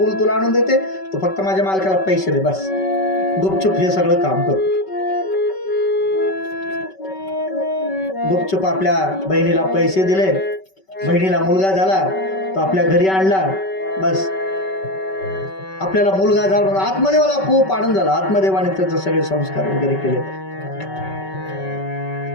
तुला आणून देते, तू फक्त माझ्या मालकाला पैसे दे, बस गुपचूप हे सगळं काम कर. गुपचूप आपल्या बहिणीला पैसे दिले. बहिणीला मुलगा झाला, तो आपल्या घरी आणला. बस आपल्याला मुलगा झाला, आत्मदेवाला खूप आनंद झाला. आत्मदेवाने त्याचे सगळे संस्कार वगैरे केले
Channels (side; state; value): right; late; 5.3 ms